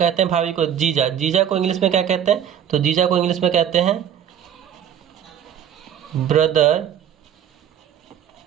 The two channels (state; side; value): quieter; left; 9.4 dB